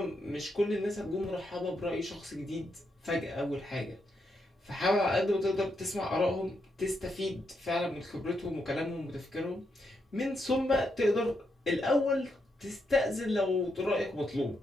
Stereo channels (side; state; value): both; normal; correlation 0.81